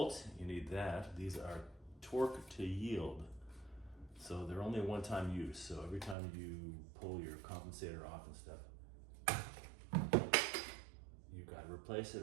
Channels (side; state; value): left; drops out; at 6.2 s